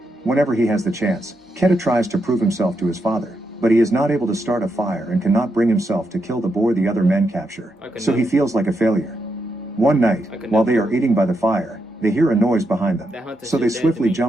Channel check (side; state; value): both; normal; correlation 0.83